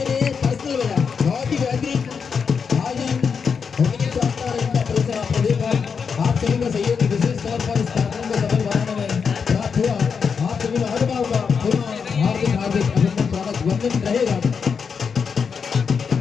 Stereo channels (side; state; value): right; quieter; 6.0 dB